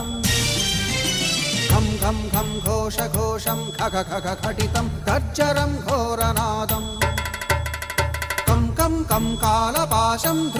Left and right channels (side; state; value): both; identical; correlation 1.00